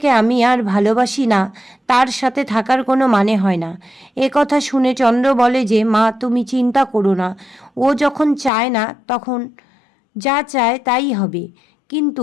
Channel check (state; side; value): drops out; right; at 8.5 s